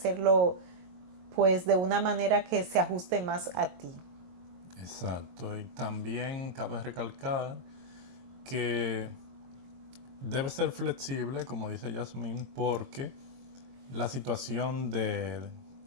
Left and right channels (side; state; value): left; late; 22 ms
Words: pues de una manera que se ajuste más a ti. Exacto, y también cabe recalcar que debe ser flexible, como dice Yasmín, porque la situación de,